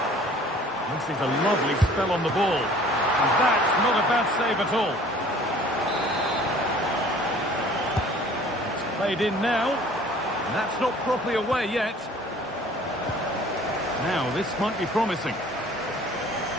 fancies a lovely spell on the ball. And that's not a bad save at all. It's played in now. And that's not properly away yet. Now, this might be promising.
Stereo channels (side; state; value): both; normal; correlation 0.51